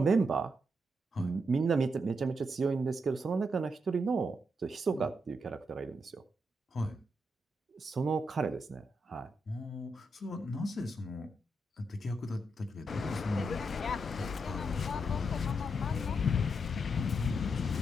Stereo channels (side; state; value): both; normal; correlation 0.81